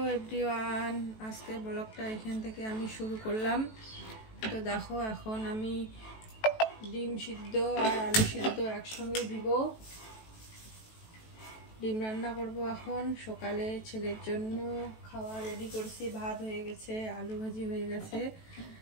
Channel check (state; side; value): late; right; 18 ms